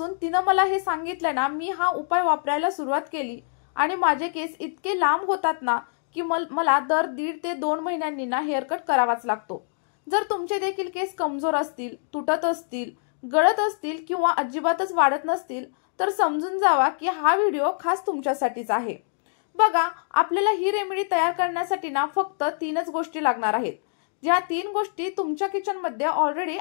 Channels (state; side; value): silent; right; digital silence